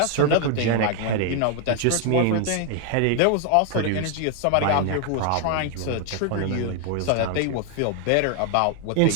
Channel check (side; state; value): both; different; correlation 0.01